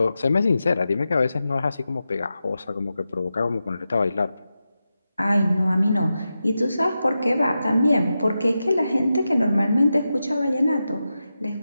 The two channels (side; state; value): both; inverted; correlation -0.91